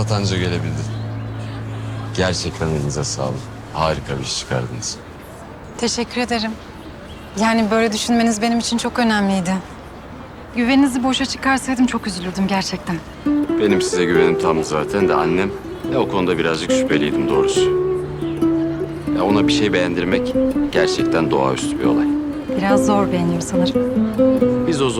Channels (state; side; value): identical; both; correlation 1.00